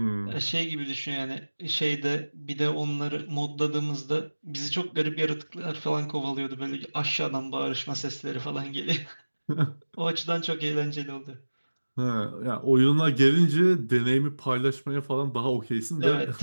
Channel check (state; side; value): inverted; both; correlation -1.00